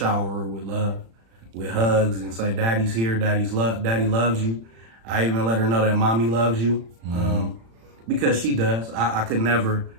her with love, with hugs, and say, daddy's here, daddy loves you. I even let her know that mommy loves you, because she does. I could never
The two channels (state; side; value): late; left; 35 ms